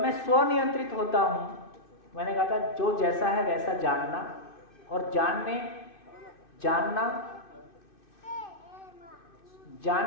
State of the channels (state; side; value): late; right; 2.6 ms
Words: स्वनियंत्रित होता हूं, मैंने कहा था जो जैसा है वैसा जानना, और